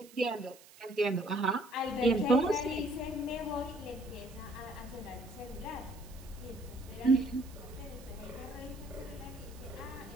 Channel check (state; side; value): noise; right; hiss, 21 dB below the sound